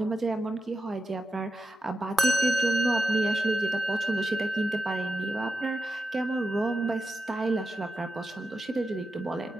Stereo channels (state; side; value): normal; both; correlation 0.88